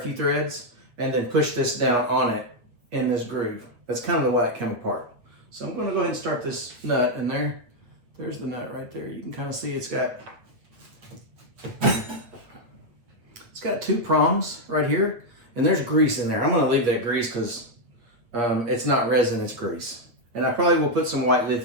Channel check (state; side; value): late; left; 8.8 ms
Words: threads, and then push this down on it in this groove. That's kind of the way it came apart. So I'm gonna go ahead and start this nut, and there's the nut right there. You can kind of see it's got two prongs right here, and there's grease in there. I'm gonna leave that grease because it's not resin, it's grease. And I probably will put some white